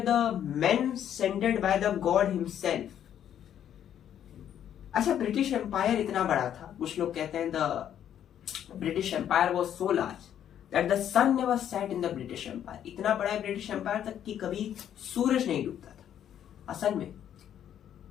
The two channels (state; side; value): quieter; right; 10.0 dB